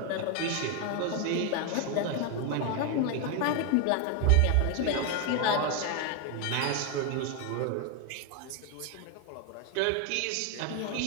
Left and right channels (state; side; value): different; both; correlation 0.01